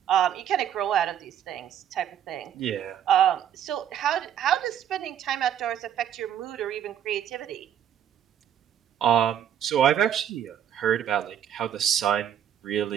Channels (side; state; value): left; quieter; 9.7 dB